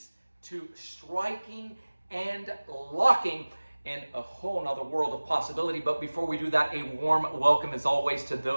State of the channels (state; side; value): inverted; both; correlation -1.00